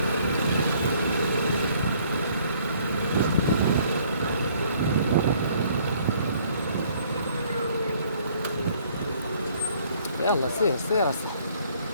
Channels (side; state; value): both; inverted; correlation -0.62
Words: يلا سير سير